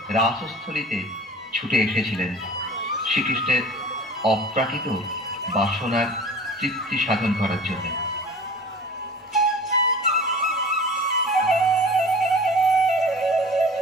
রাসস্থলীতে ছুটে এসেছিলেন শ্রীকৃষ্ণের অপ্রাকৃত বাসনার তৃপ্তি সাধন করার জন্য।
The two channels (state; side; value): normal; both; correlation 0.41